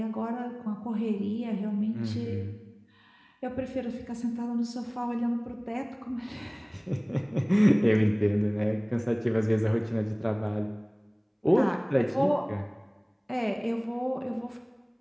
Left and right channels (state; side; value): identical; both; correlation 1.00